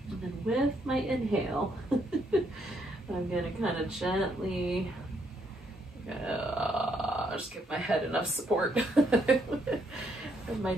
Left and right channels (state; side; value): normal; both; correlation 0.73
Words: And then with my inhale, I'm going to kind of gently just give my head enough support. And my